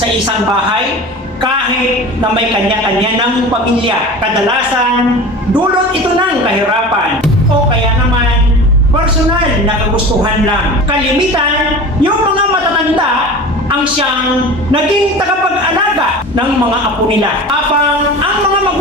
isang bahay kahit na may kanya-kanya ng pamilya. Kadalasan, dulot ito ng kahirapan o kaya naman personal na kagustuhan lang. Kalimitan, yung mga matatanda ang siyang naging tagapag-alaga ng mga apo nila. Habang ang mga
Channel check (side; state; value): both; normal; correlation 0.35